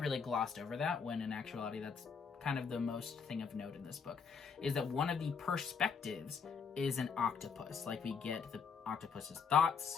glossed over that, when in actuality, that's kind of the most thing of note in this book, is that one of the perspectives is an octopus. Like, we get the octopus's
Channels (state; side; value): quieter; right; 6.0 dB